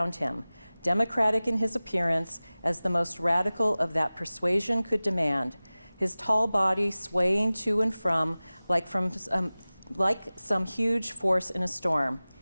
him, democratic in his appearance as the most radical of that persuasion could demand, his tall body swaying to and from like some huge force in a storm.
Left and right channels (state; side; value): inverted; both; correlation -0.98